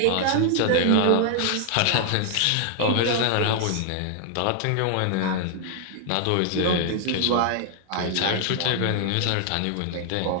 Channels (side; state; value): both; different; correlation 0.00